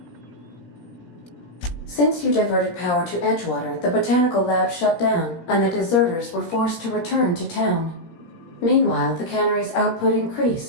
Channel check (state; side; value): late; right; 17 ms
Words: Since you diverted power to Edgewater, the botanical lab shut down, and the deserters were forced to return to town. Meanwhile, the cannery's output